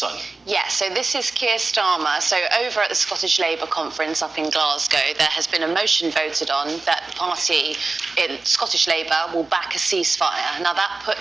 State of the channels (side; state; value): left; quieter; 3.7 dB